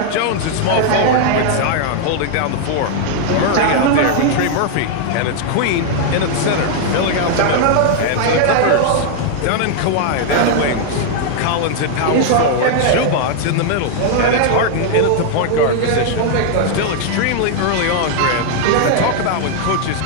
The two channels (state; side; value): different; both; correlation 0.00